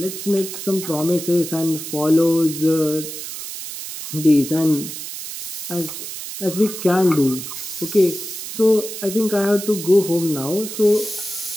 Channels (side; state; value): right; noise; hiss, 8 dB below the sound